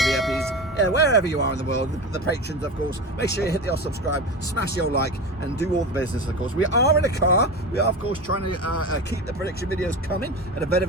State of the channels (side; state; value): both; normal; correlation 0.26